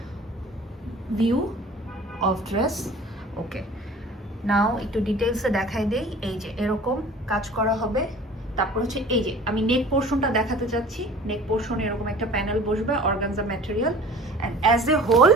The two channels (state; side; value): normal; both; correlation 0.45